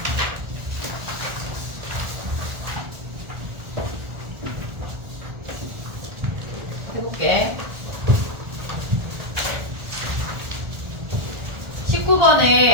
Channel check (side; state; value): left; late; 1.4 ms